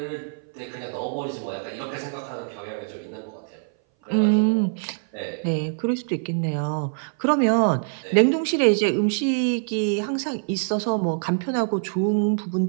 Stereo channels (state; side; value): silent; left; 59 dB below the other